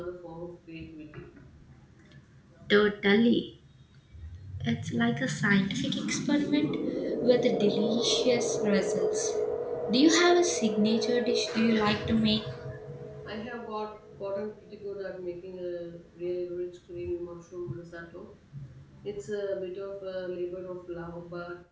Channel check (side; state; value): both; identical; correlation 1.00